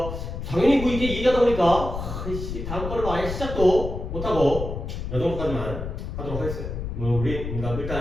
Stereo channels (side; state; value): left; noise; rumble, 6 dB below the sound